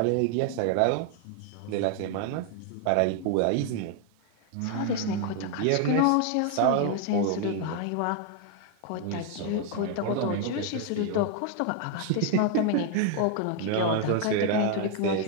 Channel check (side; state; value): both; different; correlation 0.00